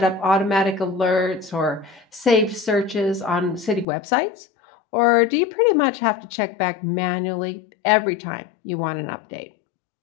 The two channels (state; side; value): drops out; right; at 3.9 s